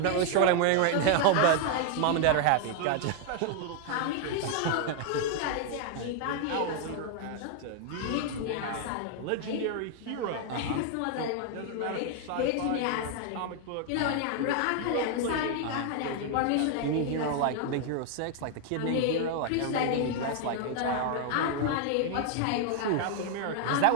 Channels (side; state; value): both; different; correlation 0.00